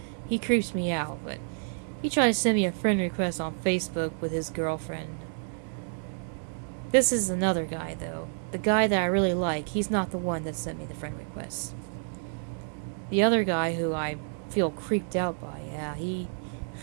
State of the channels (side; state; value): left; silent; digital silence